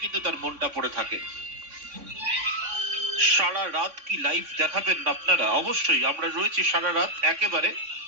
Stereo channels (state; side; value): late; left; 3.5 ms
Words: কিন্তু তার মনটা পড়ে থাকে। সারা রাত কি লাইভ দেখাবেন আপনারা? অবশ্যই আমরা রয়েছি সারা রাত, একেবারে